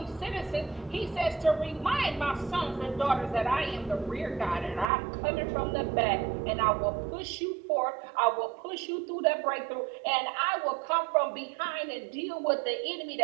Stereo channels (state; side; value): drops out; left; at 4.9 s